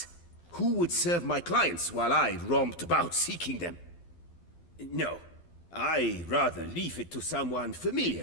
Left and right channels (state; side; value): late; right; 12 ms